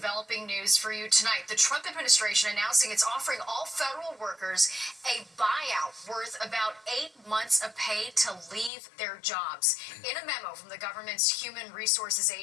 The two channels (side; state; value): right; drops out; at 8.7 s